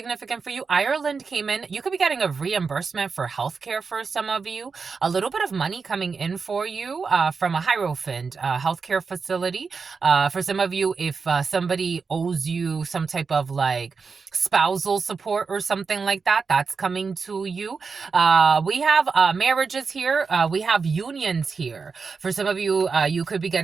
for you. Ireland came in. You could be getting a reimbursement for healthcare for some of you. A little bit of money coming in for you from a Hierophant healthcare facility. For some of you, if somebody owes you some type of like spousal support or something like that, that's coming to you. We have marriages here. We have unions here. For some of you, you could be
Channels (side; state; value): left; quieter; 5.0 dB